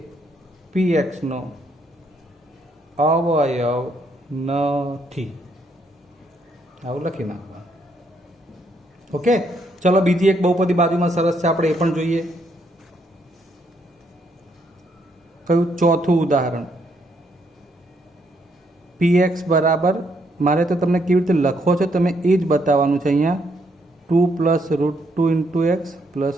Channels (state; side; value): normal; both; correlation 0.73